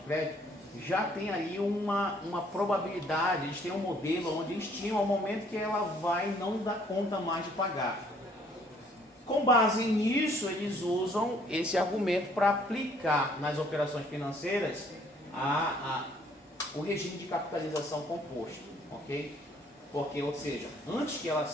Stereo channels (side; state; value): both; normal; correlation 0.62